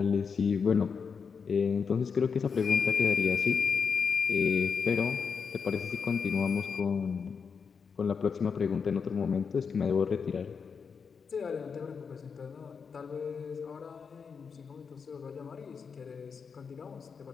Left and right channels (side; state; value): right; quieter; 5.9 dB